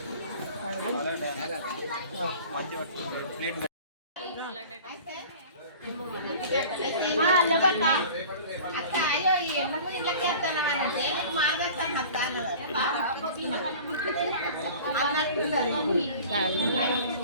అక్క అయ్యో ఎందుకు ఇళ్ళకి వస్తున్నామని మార్గస్తాను అత్త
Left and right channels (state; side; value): inverted; both; correlation -0.42